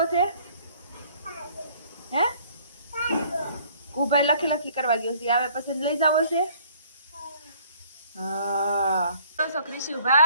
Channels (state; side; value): inverted; both; correlation -0.58